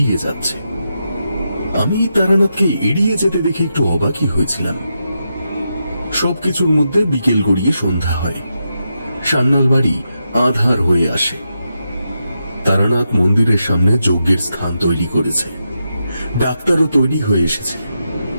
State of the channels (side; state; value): both; inverted; correlation -0.85